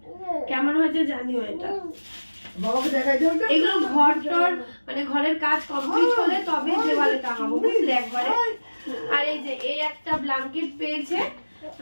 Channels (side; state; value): both; inverted; correlation -1.00